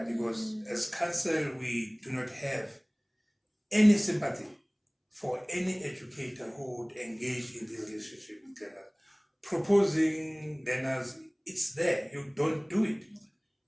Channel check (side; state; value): both; identical; correlation 1.00